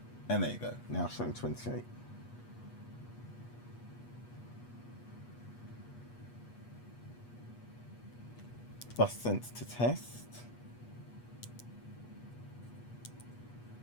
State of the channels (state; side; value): late; right; 8.3 ms